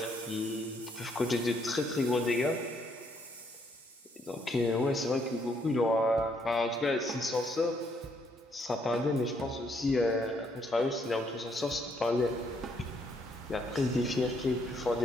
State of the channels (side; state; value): both; normal; correlation 0.71